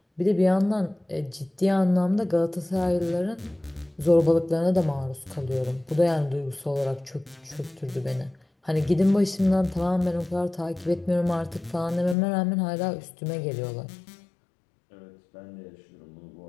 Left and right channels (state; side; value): drops out; right; at 12.2 s